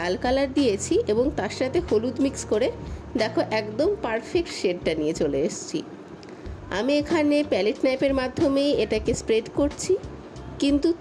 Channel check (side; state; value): both; identical; correlation 1.00